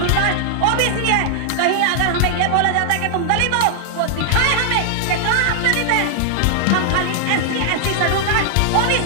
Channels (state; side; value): different; both; correlation 0.00